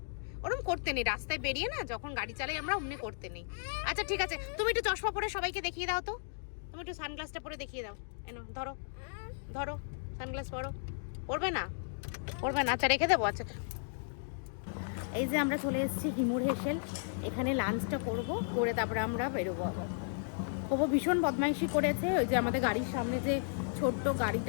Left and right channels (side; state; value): right; silent; digital silence